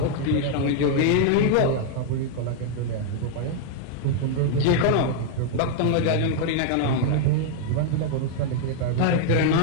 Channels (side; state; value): both; different; correlation 0.00